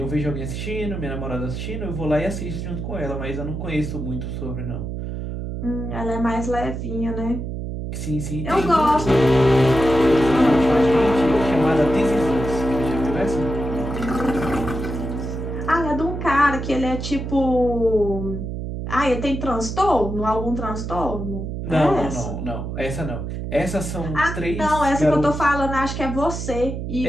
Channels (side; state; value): right; noise; hum, 5 dB below the sound